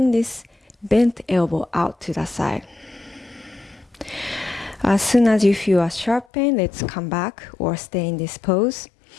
this bent elbow out to the side. As soon as you feel a sharp pain, let's come back or stay in this pose.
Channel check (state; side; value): drops out; right; at 6.2 s